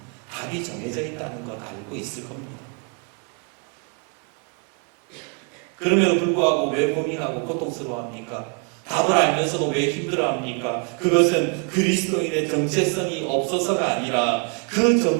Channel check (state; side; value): quieter; left; 37.1 dB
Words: 답이 정해져 있다는 것 알고 있을 겁니다. 그럼에도 불구하고 왜 고민하고 고통스러워합니까? 답을 알면서도 왜 힘들어합니까? 그것은 그리스도인의 정체성이 없어서가 아니라 그